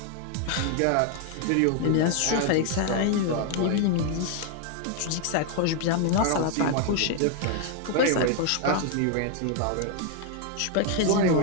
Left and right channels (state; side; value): different; both; correlation 0.00